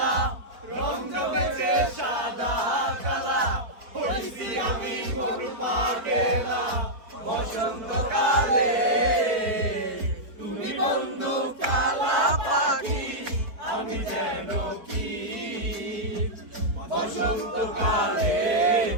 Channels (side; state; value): left; late; 4.5 ms